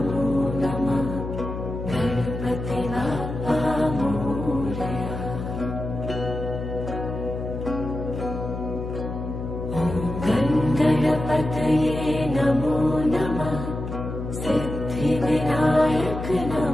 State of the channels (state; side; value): noise; left; hum, 6 dB below the sound